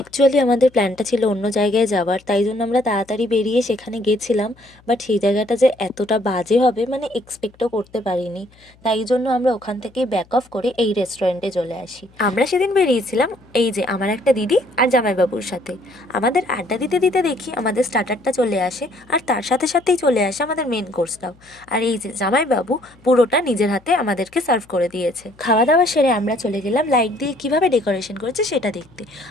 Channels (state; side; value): noise; left; hum, 29 dB below the sound